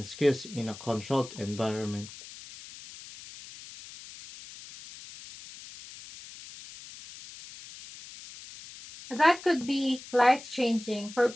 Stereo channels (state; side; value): noise; left; hiss, 16 dB below the sound